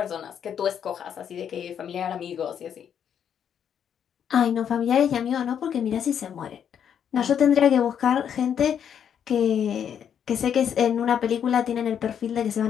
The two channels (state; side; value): quieter; right; 8.5 dB